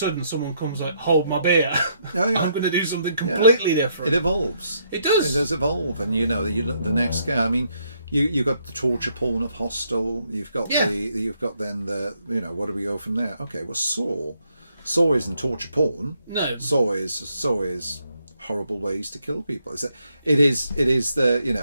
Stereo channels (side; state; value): both; inverted; correlation -0.73